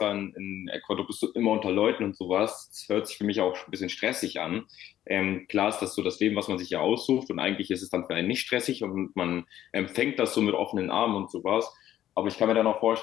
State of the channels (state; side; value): quieter; right; 12.3 dB